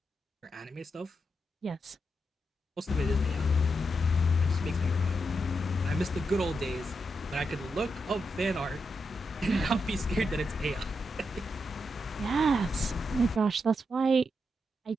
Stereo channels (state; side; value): normal; both; correlation 0.84